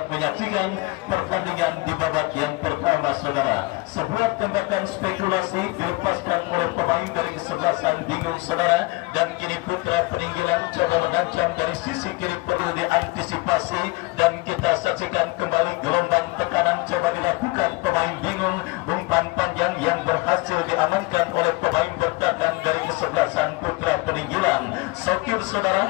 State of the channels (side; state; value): right; quieter; 24.1 dB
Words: menyaksikan pertandingan di babak yang pertama saudara. Sebuah tembakan spekulasi dilepaskan oleh pemain dari kesebelasan bingung saudara, dan kini Putra Peninggalan coba mengancam dari sisi kiri perlu diantisipasi, dan kita saksikan kembali gelombang tekanan coba dilakukan pemain bingung. Umpan panjang yang berhasil diamankan oleh pemain bertahan dari kesebelasan Putra Peninggalan. Sokir